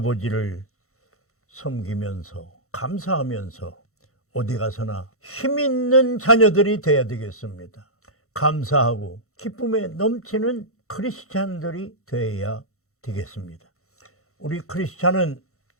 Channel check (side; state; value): right; late; 0.64 ms